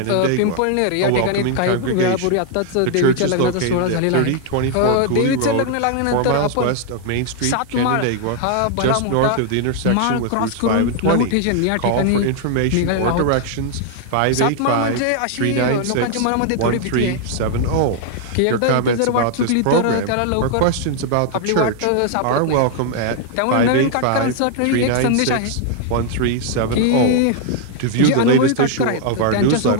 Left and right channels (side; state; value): both; different; correlation 0.00